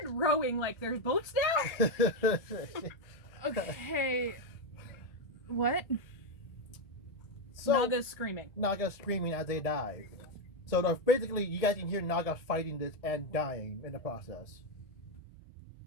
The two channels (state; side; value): late; right; 1.7 ms